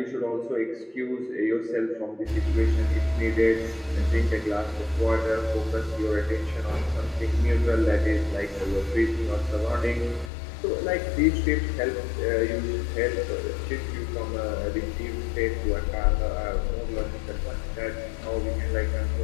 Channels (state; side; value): drops out; right; at 10.3 s